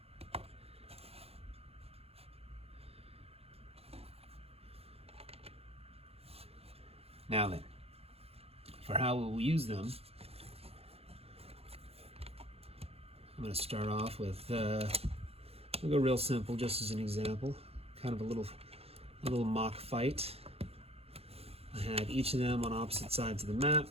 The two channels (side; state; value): left; late; 0.29 ms